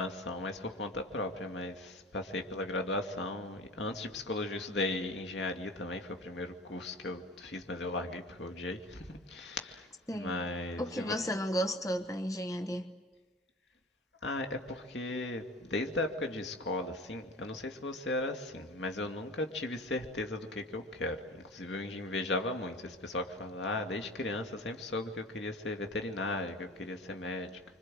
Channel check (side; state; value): both; normal; correlation 0.39